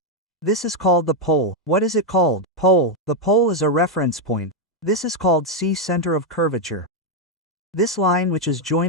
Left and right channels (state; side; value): normal; both; correlation 0.02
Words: This is called the pole. What is it called? Pole. The pole is a reference point. This is called C center of curvature. This line which is